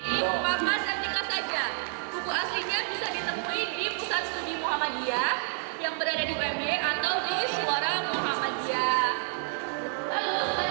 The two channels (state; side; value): silent; left; 59 dB below the other